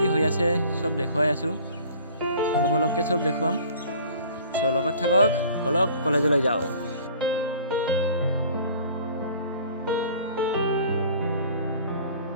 হৈ আছে চব দেখুৱাই আছোঁ, অলপকৈ চব দেখুৱাম। চ' লগত থাকক, বলক কলেজলৈ যাওঁ।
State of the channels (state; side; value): inverted; both; correlation -0.49